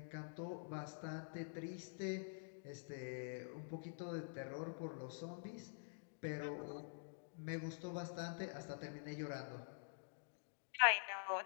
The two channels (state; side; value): silent; right; digital silence